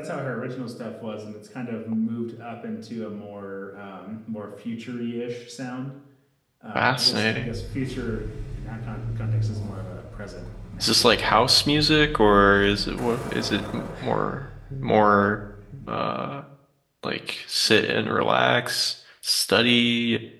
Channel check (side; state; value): both; identical; correlation 1.00